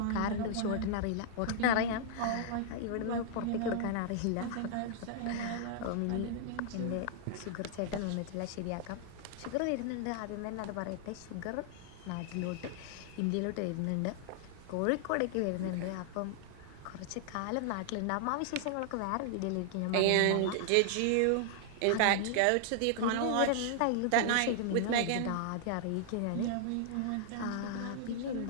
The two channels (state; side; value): different; both; correlation -0.01